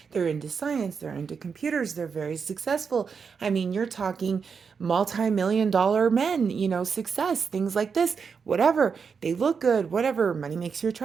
They're into science. They're into computers. They're very successful. I mean, you're talking multi-million-dollar men, success, things like this, whatever. They look good, whatever. Money makes you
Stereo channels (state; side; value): quieter; left; 5.9 dB